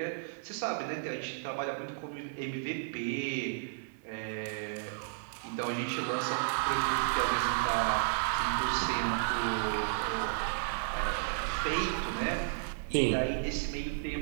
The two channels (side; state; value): left; silent; digital silence